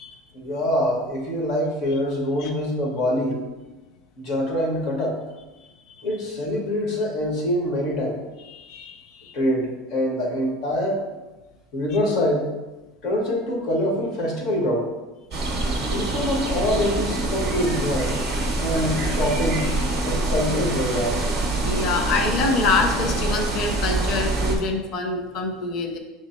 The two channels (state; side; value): normal; both; correlation 0.42